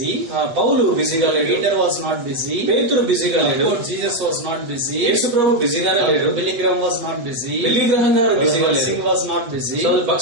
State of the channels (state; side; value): late; left; 8.2 ms